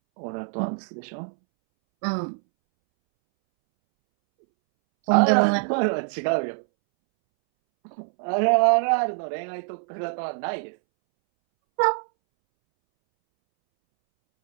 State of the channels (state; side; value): silent; left; 62 dB below the other